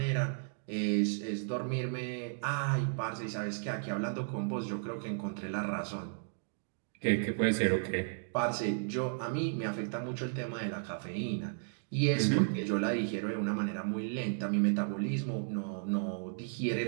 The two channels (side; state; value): left; silent; digital silence